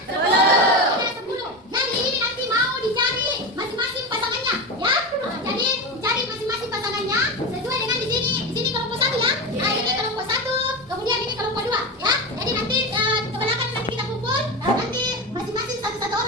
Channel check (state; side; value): normal; both; correlation 0.21